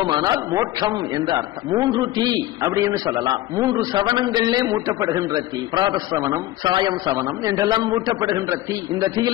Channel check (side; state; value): right; quieter; 15.4 dB